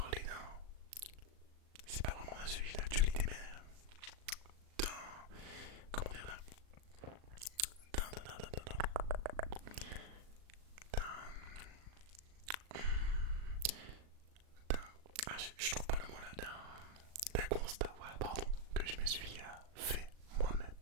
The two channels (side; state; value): left; late; 38 ms